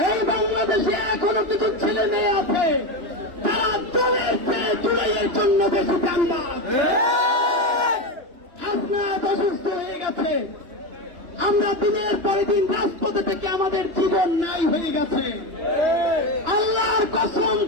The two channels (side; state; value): left; late; 2.9 ms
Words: এই বাংলাদেশে এখনো কিছু ছেলে মেয়ে আছে তারা দলের চেয়ে জুলাইয়ের জন্য বেশি কান্না। আপনারা অসুস্থ হয়ে গেছে, আমরা দিনের পরে দিন রাজপথে থেকে আমাদের জীবন নাই হয়ে গেছে। আল্লাহর কসম